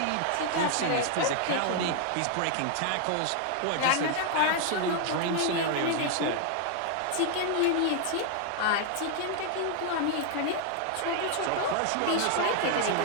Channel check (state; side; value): different; both; correlation 0.00